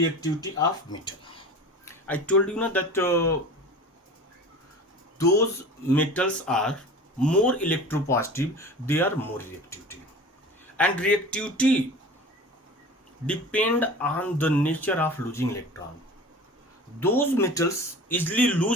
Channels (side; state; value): both; normal; correlation 0.37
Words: of metal. I told you now that those metals are more electropositive, they are more reactivity, and reactivity depend on the nature of losing electron. Those metals easily